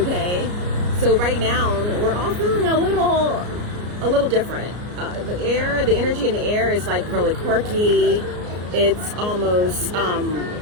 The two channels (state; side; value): late; left; 34 ms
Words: so right now we're all feeling a little different. The energy in the air is like really quirky. It's almost